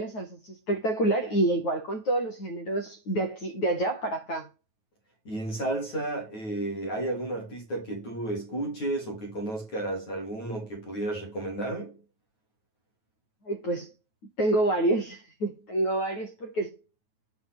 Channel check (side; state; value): right; late; 9.3 ms